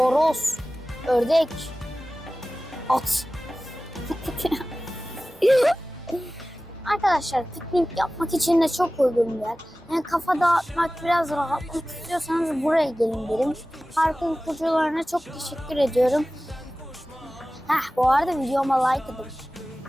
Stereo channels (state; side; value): normal; both; correlation 0.97